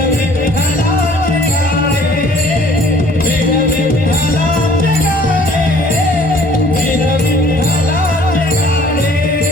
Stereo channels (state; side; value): normal; both; correlation 0.56